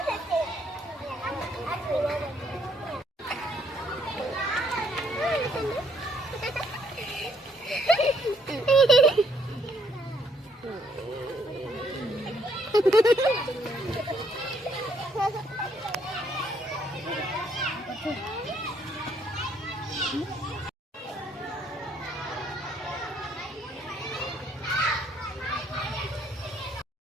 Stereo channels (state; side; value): normal; both; correlation 0.68